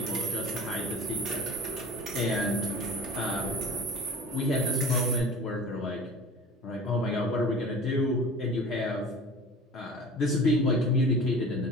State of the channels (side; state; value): both; normal; correlation 0.39